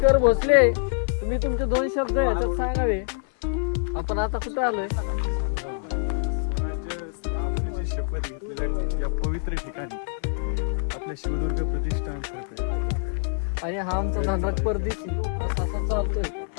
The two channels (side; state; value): right; silent; digital silence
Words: भोसले, तुम्ही तुमचे 2 शब्द याच्यात सांगावे. आपण आता कुठे आलोय? शपथ घेतलेल्या या पवित्र ठिकाणी आपल्या शिवदुर्ग प्रतिष्ठान करते. आणि हा आमचा धनराज परदेशी असा चालतोय.